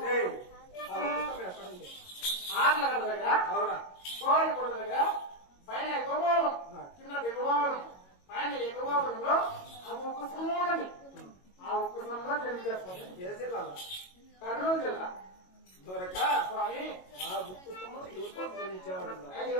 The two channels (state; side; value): late; right; 22 ms